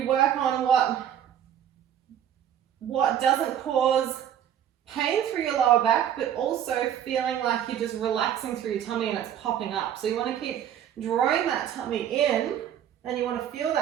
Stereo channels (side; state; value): left; quieter; 10.0 dB